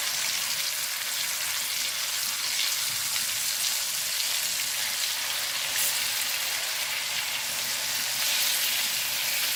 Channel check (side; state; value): both; identical; correlation 1.00